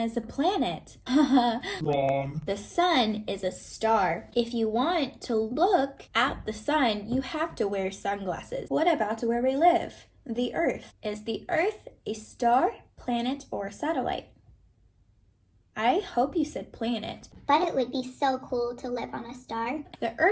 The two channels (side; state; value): both; identical; correlation 1.00